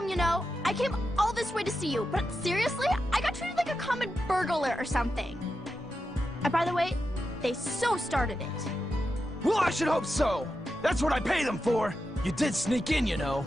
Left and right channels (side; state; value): both; normal; correlation 0.89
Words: you know. I came all this way to see you, but seriously, I got treated like a common burglar or something. And by the way, they so started it. Well, I should hope so. That's what I pay them for. You did sneak in, you know.